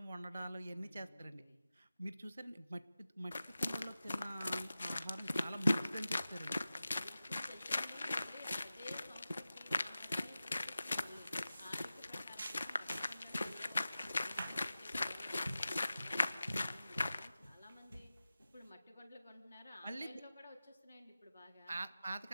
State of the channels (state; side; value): inverted; both; correlation -0.95